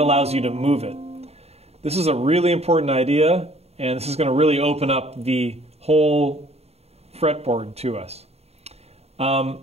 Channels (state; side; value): late; left; 0.30 ms